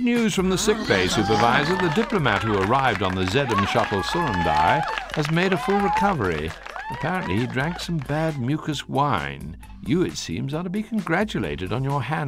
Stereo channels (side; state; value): both; identical; correlation 1.00